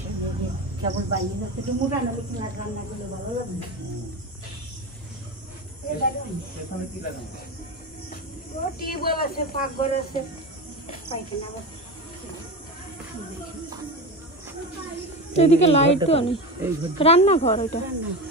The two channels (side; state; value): both; normal; correlation 0.23